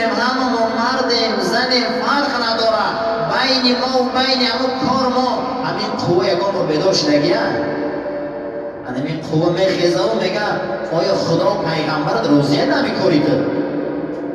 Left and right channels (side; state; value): both; identical; correlation 1.00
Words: همه ما مردیم زنیم فرق نداره، بین ما و بین همون کار ما همین قوه یکان رو بیدار شدگیه. همین قوه میخیزه و میگه آیا خدا و پیغمبرت روزیه نمیکنی تو؟